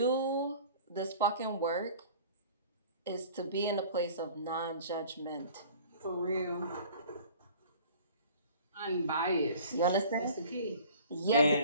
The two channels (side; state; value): both; inverted; correlation -0.47